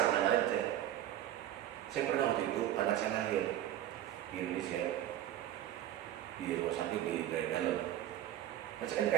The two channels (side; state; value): left; quieter; 12.3 dB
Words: aja. Saya pernah waktu itu anak saya lahir di Indonesia di rumah sakit di dalam. Nah, saya kan